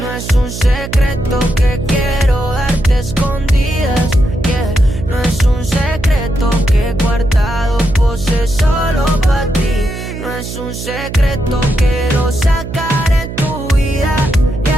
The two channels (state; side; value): noise; right; hum, 9 dB below the sound